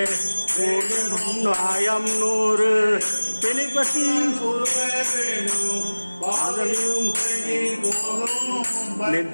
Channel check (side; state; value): both; inverted; correlation -1.00